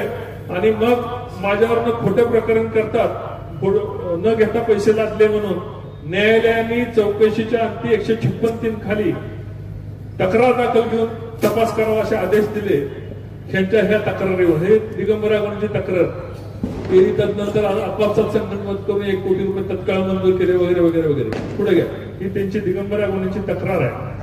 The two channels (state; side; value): identical; both; correlation 1.00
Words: आणि मग माझ्यावरनं खोटं प्रकरण करतात. न घेता पैसे लादले म्हणून न्यायालयाने चौकशीच्या अंती 156(3) खाली तक्रार दाखल घेऊन तपास करावा असे आदेश दिले. ह्यांच्या ह्या तक्रारीवर हे दिगंबर अगवणेंची तक्रार केली. तदनंतर आपापसात संगनमत करून 1 कोटी रुपये तत्काळ मंजूर केले वगैरे वगैरे वगैरे. पुढे घ्या. ही त्यांची दिगंबर अगवणेंची तक्रार आहे.